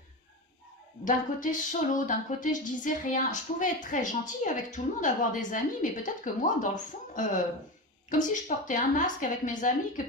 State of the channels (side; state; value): both; normal; correlation 0.21